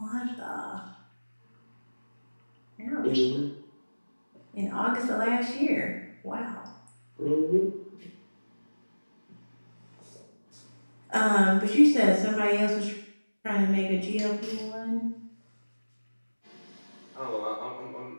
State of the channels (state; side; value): inverted; both; correlation -1.00